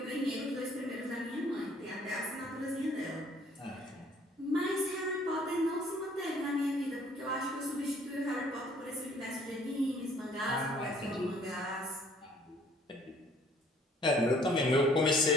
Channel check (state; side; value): normal; both; correlation 0.58